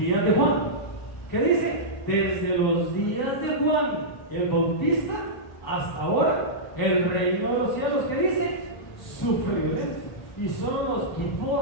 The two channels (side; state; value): right; late; 1.3 ms